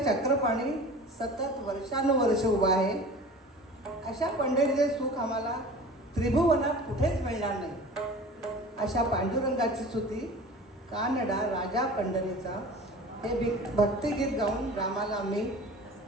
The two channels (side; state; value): both; normal; correlation 0.40